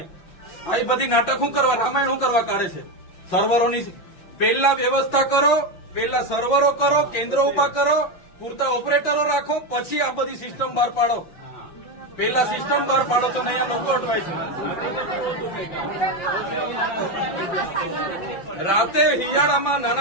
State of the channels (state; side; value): late; right; 5.7 ms